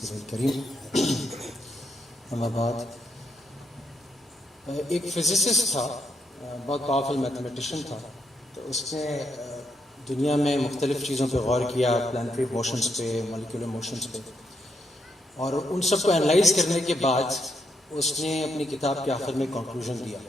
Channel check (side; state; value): both; normal; correlation 0.79